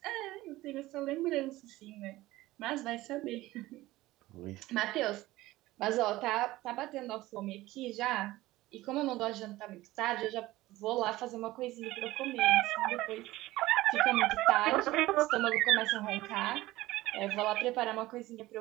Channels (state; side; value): quieter; left; 17.7 dB